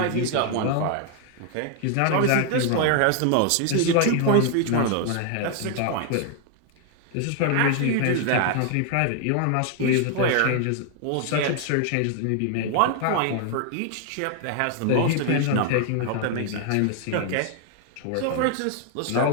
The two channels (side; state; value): both; different; correlation 0.00